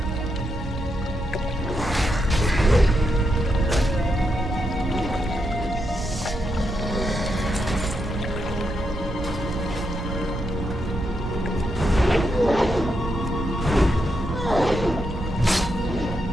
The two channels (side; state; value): right; noise; hum, 11 dB below the sound